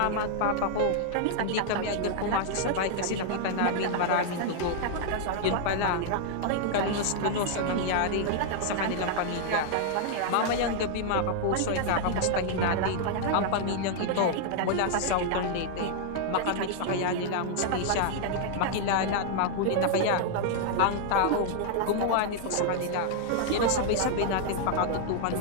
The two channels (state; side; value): different; both; correlation 0.00